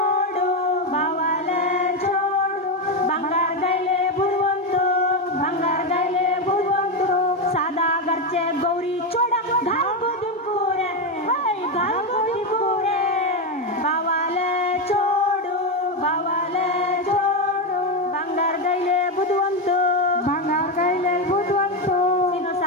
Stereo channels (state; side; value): normal; both; correlation 0.09